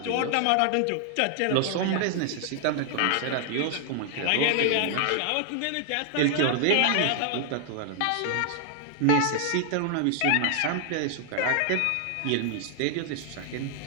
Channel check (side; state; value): both; different; correlation 0.00